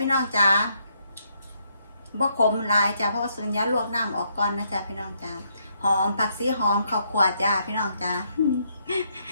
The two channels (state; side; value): inverted; both; correlation -0.74